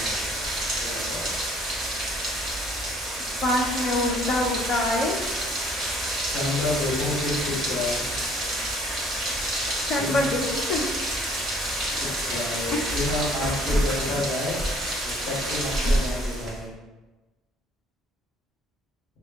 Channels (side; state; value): both; normal; correlation 0.59